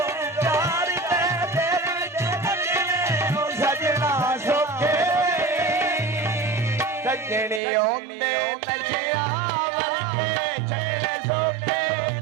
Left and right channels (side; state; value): left; drops out; at 7.6 s